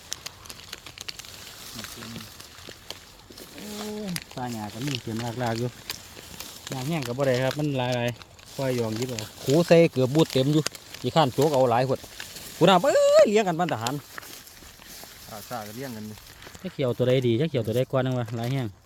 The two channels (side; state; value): both; identical; correlation 1.00